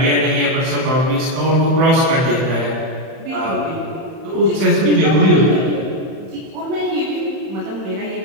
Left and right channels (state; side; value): late; left; 31 ms